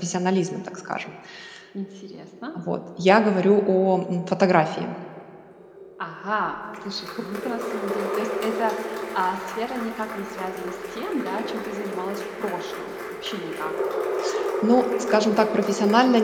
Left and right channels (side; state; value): both; identical; correlation 1.00